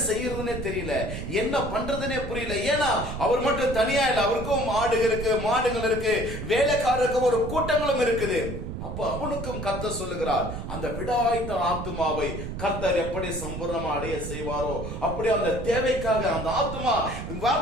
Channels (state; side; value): noise; right; rumble, 7 dB below the sound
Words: செய்யறதுன்னே தெரியல, என்ன பண்றதுன்னே புரியல. ஏன்னா அவர் மட்டும் தனியா இல்ல, அவருக்கும் ஆடுகள் இருக்கு, மாடுகள் இருக்கு, வேலைக்காரருக்கு ஒரு கூட்டங்களும் இருக்குது. அப்ப அவனுக்கும் கர்த்தர் சொல்லுகிறார், அந்த விடாய்த்த ஆத்துமாவை கர்த்தர் எப்படி சம்பூர்ணமா அடைய செய்வாரோ அப்படி அந்த தேவைக்காக அந்த ஆத்துமா,